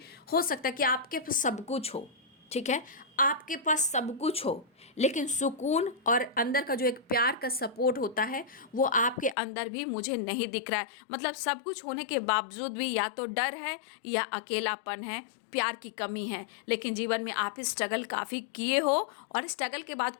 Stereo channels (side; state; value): right; drops out; at 9.3 s